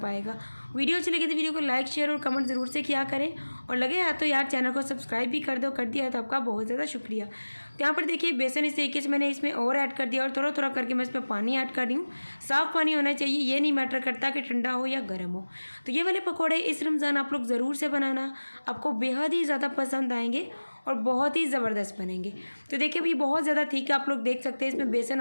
वीडियो अच्छी लगी तो वीडियो को लाइक शेयर और कमेंट ज़रूर से किया करें, और लगे यार तो यार चैनल को सब्सक्राइब भी कर दो। कर दिया है तो आपका बहुत ज़्यादा शुक्रिया। तो यहाँ पर देखिए, बेसन इस तरीके से मैंने इसमें और ऐड कर दिया और थोड़ा थोड़ा करके मैं इसमें पानी ऐड कर रही हूँ। साफ़ पानी होना चाहिए, ये नहीं मैटर करता कि ठंडा हो या गर्म हो। तो ये वाले पकौड़े इस रमज़ान आप लोग ज़रूर से बनाना, आपको बेहद ही ज़्यादा पसंद आएंगे और बहुत ही ज़बरदस्त बनेंगे। तो देखिए, अभी बहुत ज़्यादा ठीक है, आप लोग देख सकते हैं। इसमें बेसन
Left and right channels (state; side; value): inverted; both; correlation -1.00